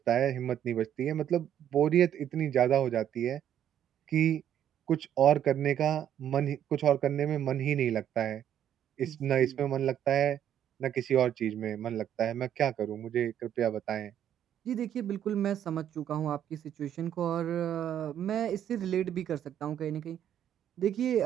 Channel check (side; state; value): left; quieter; 10.2 dB